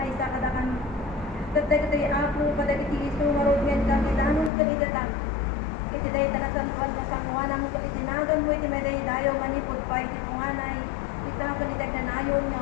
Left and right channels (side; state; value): right; drops out; at 4.5 s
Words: sa kada kami. Tatay iti ako kada iti iso nga rod ngayon kami danon kabidata. Iti dahi tanasan nga sanguanan mo iti tinagan mo iti meday dayo manipod pa iti punganay ita kanitag na nayon nga